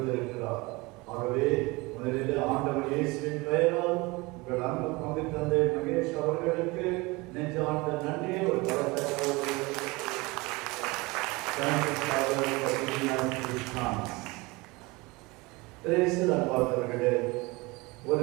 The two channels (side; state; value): left; quieter; 24.0 dB